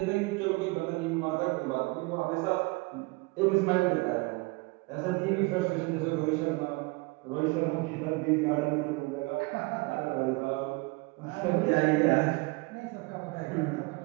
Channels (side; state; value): left; quieter; 26.0 dB